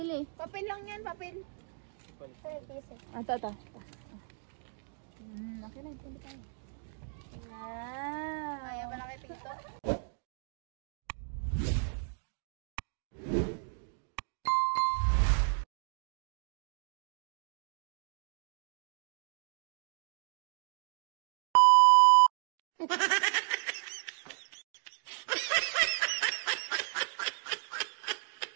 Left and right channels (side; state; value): left; silent; 55 dB below the other